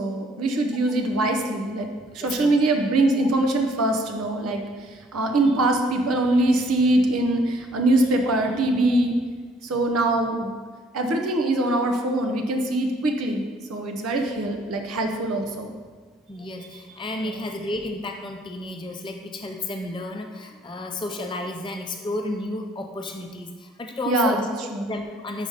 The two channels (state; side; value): normal; both; correlation 0.62